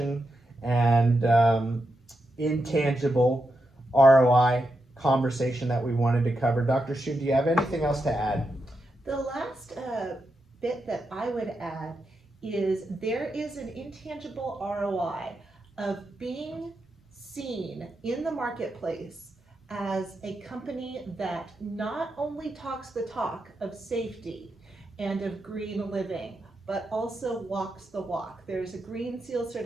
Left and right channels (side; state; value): both; normal; correlation 0.86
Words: and intangible ROI conversation that we wanted to cover. Dr. Shu, do you have anything else to add? The last bit that I would add is there is an intangible ROI of being seen in the marketplace as a company that not only talks the talk of safety and of green living, but also walks the walk. There's a Green Seal